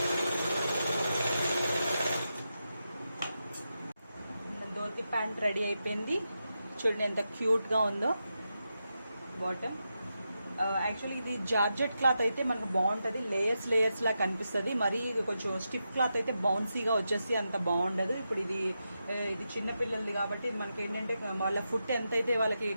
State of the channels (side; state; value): both; inverted; correlation -0.88